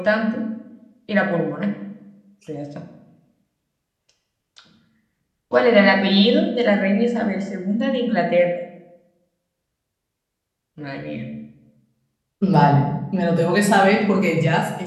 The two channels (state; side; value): identical; both; correlation 1.00